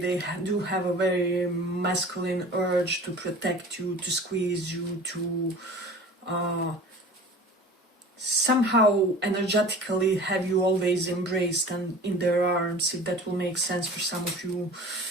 do have a very masculine urge to protect you, to squeeze you, to somehow energetically have you always embraced and in their arms, if that will make sense for some of you.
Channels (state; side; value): normal; both; correlation 0.41